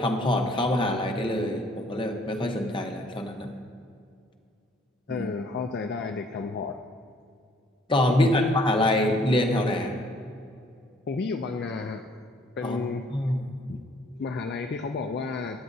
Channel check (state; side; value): normal; both; correlation 0.61